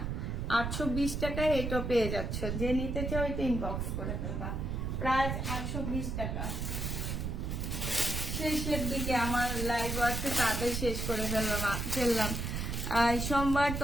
820 টাকায় এটা পেয়ে যাচ্ছ। যে নিতে চাও এটা ইনবক্স করে ফেলবা। প্রাইস 820 টাকা। শেষের দিকে আমার লাইভ আছে, তাড়াতাড়ি শেষ করে ফেললাম। সোমবার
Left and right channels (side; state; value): right; noise; rumble, 2 dB below the sound